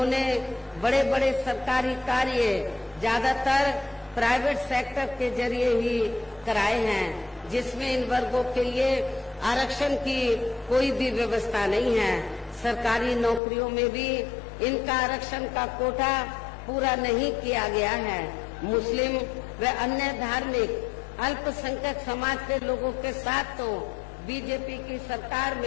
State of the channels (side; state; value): right; drops out; at 13.4 s